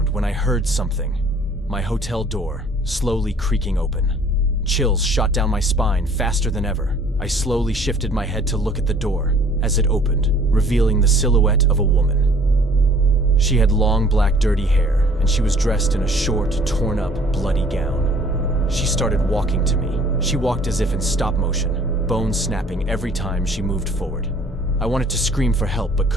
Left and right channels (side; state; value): both; normal; correlation 0.55